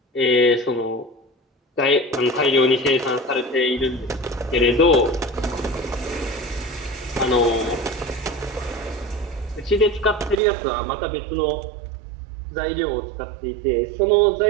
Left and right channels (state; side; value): drops out; left; at 10.4 s